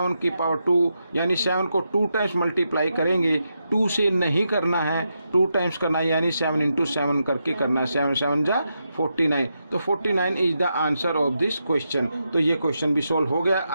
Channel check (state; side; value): inverted; both; correlation -0.85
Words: की पावर 2, यानी 7 को 2 टाइम्स मल्टीप्लाई करेंगे। 2 से नहीं करना है, 2 टाइम्स करना है, यानी 7 × 7 करके करना है। 7 7 जा 49, तो 49 is the answer of this question. तो ये क्वेश्चन भी सोल्व हो गया।